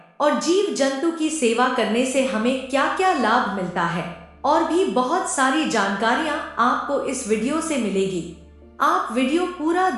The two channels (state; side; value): identical; both; correlation 1.00